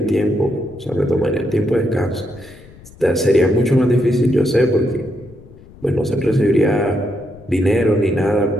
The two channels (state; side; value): noise; left; rumble, 22 dB below the sound